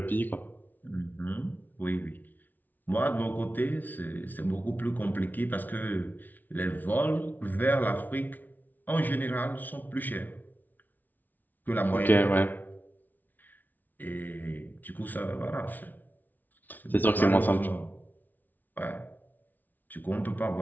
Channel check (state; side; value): late; right; 0.083 ms